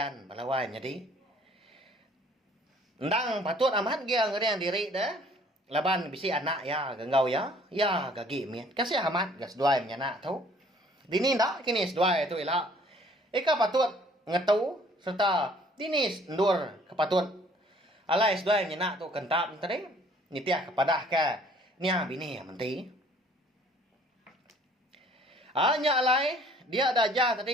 Balawai jadi. Ndang patut amat dia ngeriang diri dah. Laban bisi anak ya genggau ya. Ya gagi mian. Kasih amat gas duai menyanak tu. Dini ndak kini seduai tu ila. Eka patut ngetu serta dini ndur kepatut. Alai seduai menyanak tu kentap tadi. Nitiah kepada ke nia bini menti. Hanya alai dia ada aja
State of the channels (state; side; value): normal; both; correlation 0.57